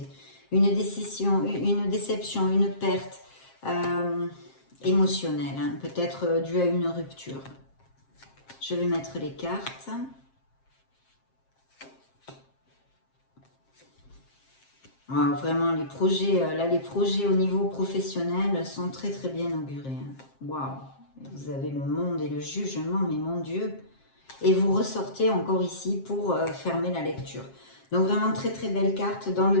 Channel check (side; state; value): right; late; 7.5 ms